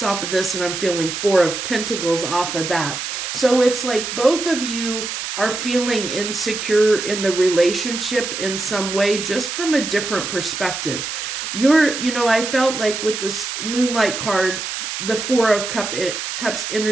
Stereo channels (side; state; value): right; noise; hiss, 5 dB below the sound